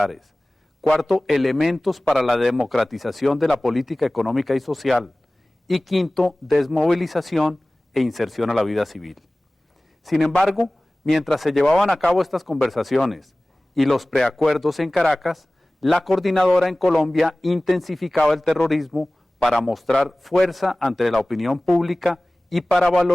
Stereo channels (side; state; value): both; normal; correlation 0.98